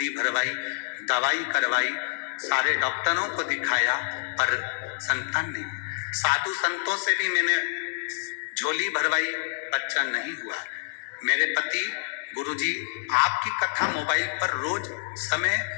भरवाई, दवाई करवाई, सारे डॉक्टरों को दिखाया, पर संतान नहीं। साधु संतों से भी मैंने झोली भरवाई, बच्चा नहीं हुआ। मेरे पति गुरुजी आपकी कथा मोबाइल पर रोज समय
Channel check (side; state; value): right; silent; digital silence